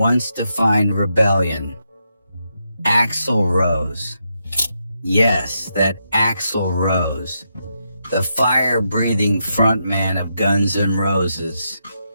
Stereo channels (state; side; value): inverted; both; correlation -0.82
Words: defined rebellion. Axl Rose. Yes, that Axl Rose, the fire-breathing frontman of Guns N' Roses,